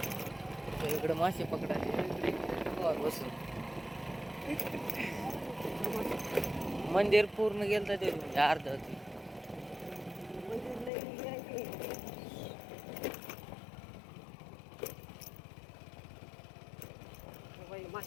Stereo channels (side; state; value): right; drops out; at 10.9 s